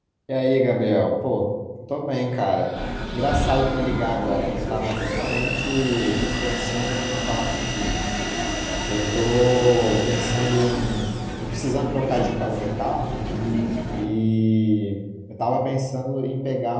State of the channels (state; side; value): identical; both; correlation 1.00